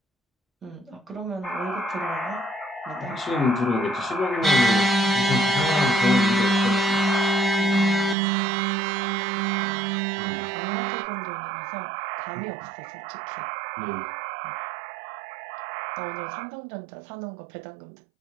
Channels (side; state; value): left; drops out; at 8.2 s